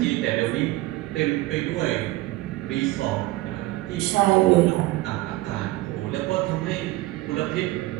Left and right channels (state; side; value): quieter; left; 18.7 dB